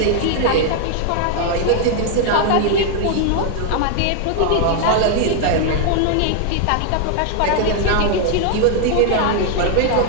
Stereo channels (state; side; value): different; both; correlation 0.00